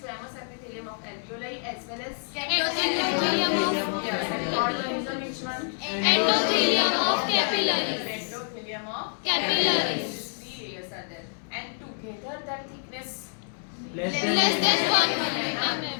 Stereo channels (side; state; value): right; silent; 60 dB below the other